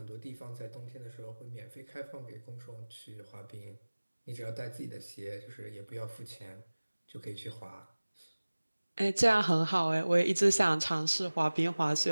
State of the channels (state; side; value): inverted; both; correlation -1.00